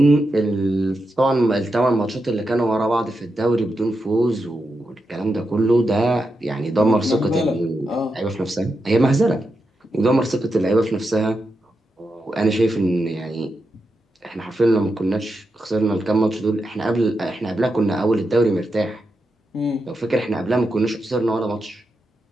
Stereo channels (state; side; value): normal; both; correlation 0.87